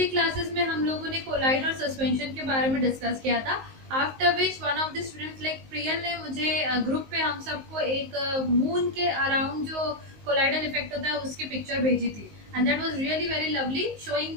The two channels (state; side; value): late; left; 19 ms